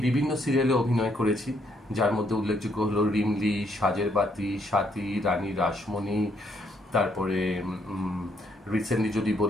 বিভিন্ন সিরিয়ালে অভিনয় করেছি, যার মধ্যে উল্লেখযোগ্য হলো রিমলি, সাজের বাতি, সাথী, রানী রাসমণি। তারপরে রিসেন্টলি যদি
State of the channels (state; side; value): normal; both; correlation 0.72